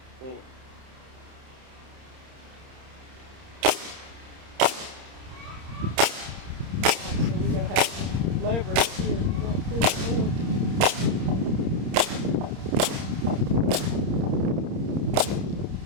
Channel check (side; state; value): left; late; 30 ms